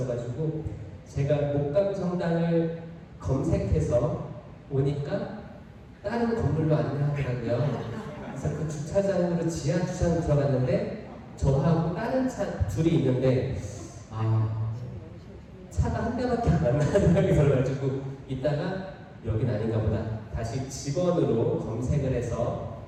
제가 목감 성당을 검색해서 오니까 다른 건물로 안내하더라고요. 그래서 그 주차장으로 지하 주차장 들어갔는데 저하고 다른 차 둘이 있는데 차가 한 대밖에 안 나는 생각이 들어가지고 이따가 여긴 아닌가 보다 다시 직원으로 검색을 해서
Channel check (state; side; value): identical; both; correlation 1.00